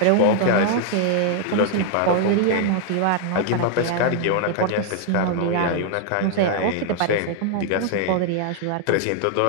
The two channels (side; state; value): both; different; correlation 0.00